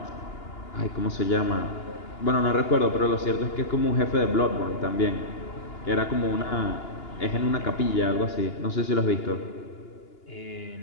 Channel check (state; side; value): late; right; 2.9 ms